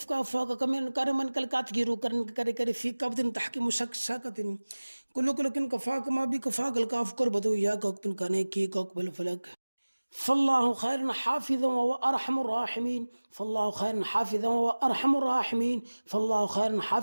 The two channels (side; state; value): both; inverted; correlation -1.00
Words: كافوك كميلا كان من كلك تكير كرن ككر في كعبد تحكم شك شكد كل كن كفاك ما بي كفاك الكاف كربتو يا كوكبن كان يكي كوكبل فلك فالله خير حافظا وأرحم الراحمين فالله خير حافظا وأرحم الراحمين فالله خير